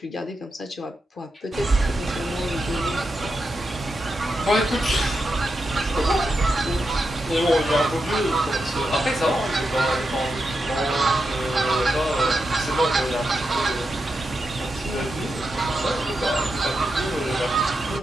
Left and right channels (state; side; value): normal; both; correlation 0.87